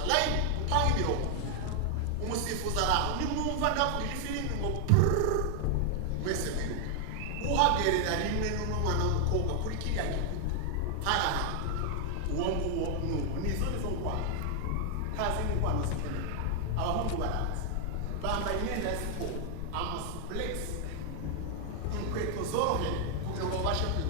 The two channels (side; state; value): both; different; correlation 0.00